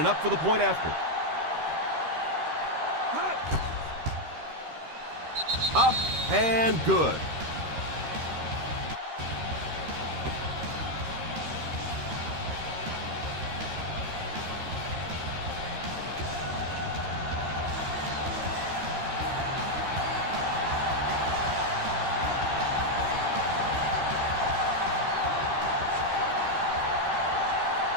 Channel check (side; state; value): left; late; 13 ms